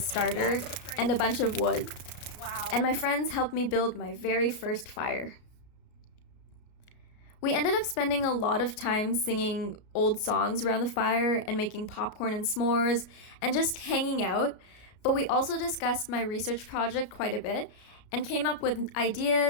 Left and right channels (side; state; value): right; late; 33 ms